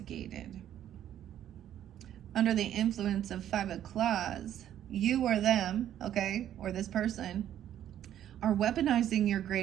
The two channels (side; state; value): left; quieter; 11.1 dB